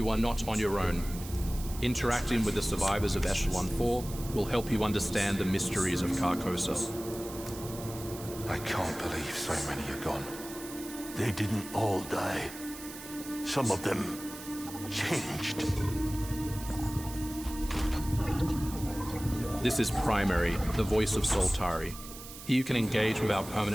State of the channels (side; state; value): right; noise; hiss, 13 dB below the sound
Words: are not on your own. Interacting with the survivors of Echelon 4 will help you understand the mysteries of Carcosa. I can't believe so many are gone. They didn't all die. Some of them changed. This is Primary, the voice of Soltari. Here you can engage with our